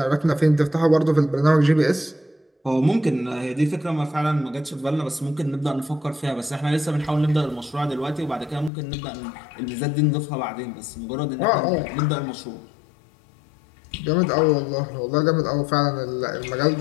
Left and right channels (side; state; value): right; drops out; at 8.7 s